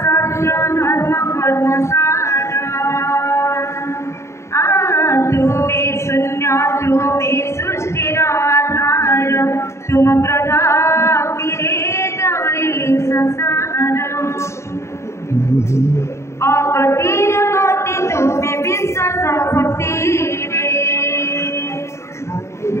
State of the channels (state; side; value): late; right; 0.13 ms